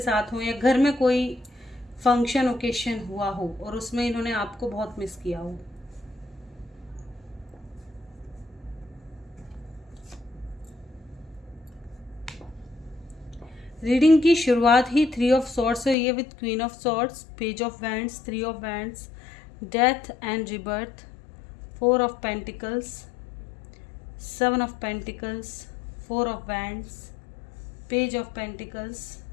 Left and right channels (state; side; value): drops out; right; at 16.0 s